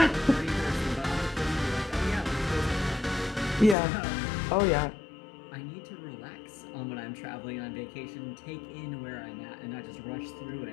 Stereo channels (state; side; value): drops out; right; at 3.8 s